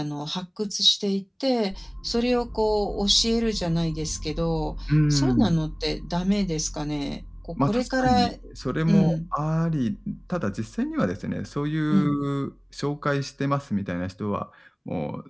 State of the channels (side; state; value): both; identical; correlation 1.00